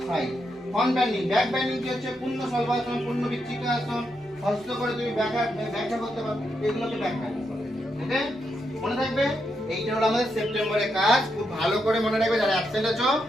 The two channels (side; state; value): both; normal; correlation 0.82